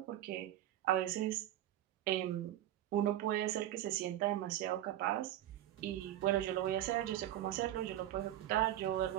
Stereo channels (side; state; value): left; quieter; 12.9 dB